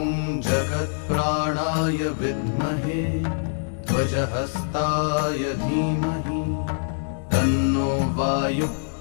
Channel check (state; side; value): silent; right; digital silence